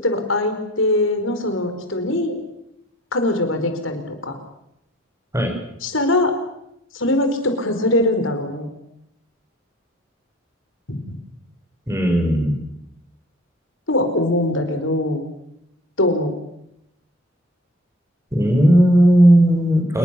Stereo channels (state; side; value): normal; both; correlation 0.54